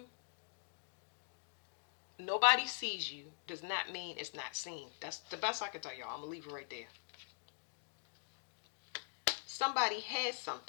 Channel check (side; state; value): right; silent; digital silence